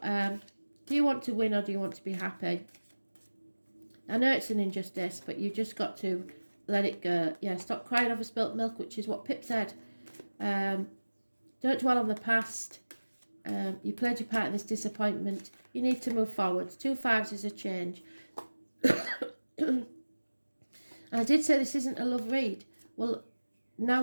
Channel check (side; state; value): both; inverted; correlation -1.00